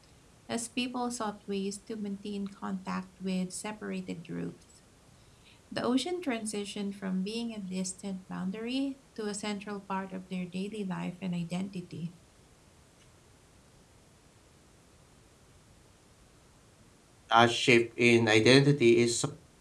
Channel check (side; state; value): both; identical; correlation 1.00